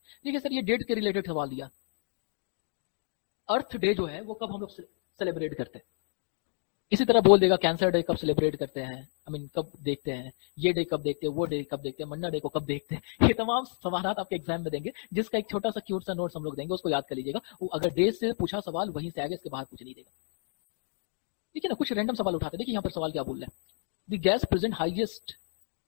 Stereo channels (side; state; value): right; silent; 57 dB below the other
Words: सर ये डेट के रिलेटेड सवाल दिया। अर्थ डे जो है वो कब हम लोग सेलिब्रेट करते हैं? इसी तरह बोल देगा कैंसर डे कब सेलिब्रेट करते हैं, आई मीन कब देखते हैं, ये डे कब देखते हैं, वो डे कब देखते हैं, मन्ना डे को कब देखते हैं। ये तमाम सवाल आपके एग्जाम में देंगे, जिसका एक छोटा सा क्यूट सा नोट्स हम लोग देंगे, उसको याद कर लीजिएगा। वो अगर डे से पूछा सवाल वहीं से आगे, इसके बाहर कुछ नहीं देगा। देखिए ना कुछ रैंडम सवाल उठाते हैं। देखिए यहाँ पर सवाल क्या बोल रहा है, द गैस प्रेजेंट हाईएस्ट,